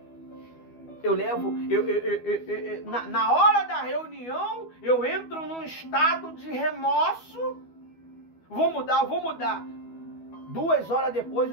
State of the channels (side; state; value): right; late; 12 ms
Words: Na hora da reunião, eu entro num estado de remorso. Vou mudar. 2 horas depois